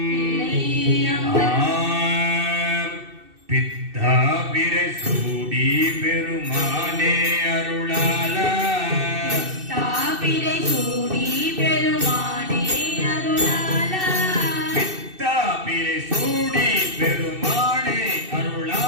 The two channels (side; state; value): left; late; 2.6 ms